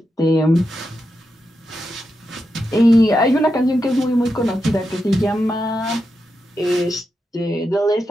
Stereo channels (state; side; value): normal; both; correlation 0.87